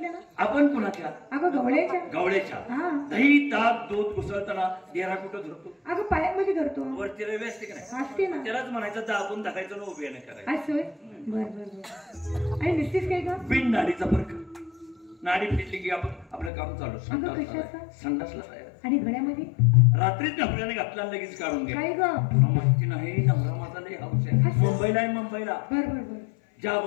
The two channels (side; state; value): right; drops out; at 16.5 s